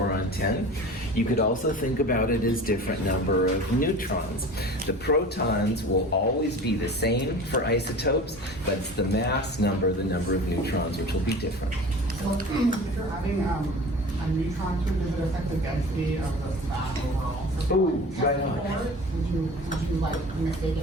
10. You could also think about it as different number of neutrons. The protons will always be the same for isotopes, but it's the mass number, the number of neutrons, which will be different. So if you're having a neutron tube, does it affect the density of the mass overall? So Ooh, like, right on. Would you like mistake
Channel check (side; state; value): both; normal; correlation 0.38